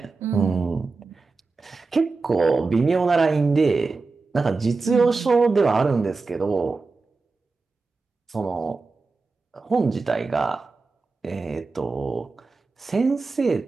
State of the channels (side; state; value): left; quieter; 4.0 dB